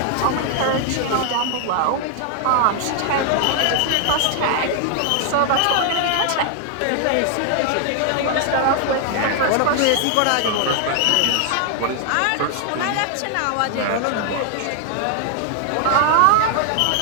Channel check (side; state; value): both; different; correlation 0.00